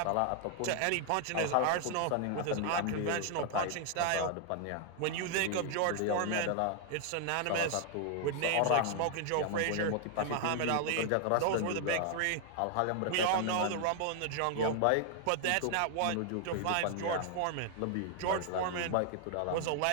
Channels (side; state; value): both; different; correlation 0.00